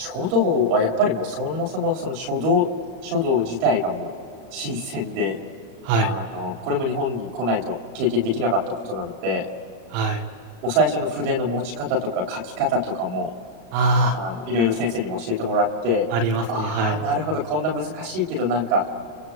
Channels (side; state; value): left; late; 38 ms